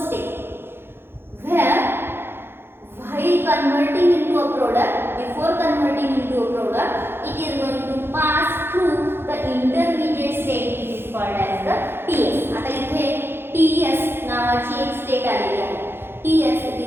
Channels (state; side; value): late; left; 0.11 ms